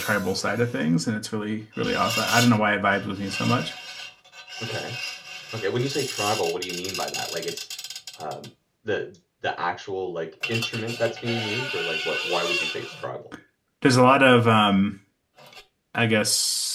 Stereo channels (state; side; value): identical; both; correlation 1.00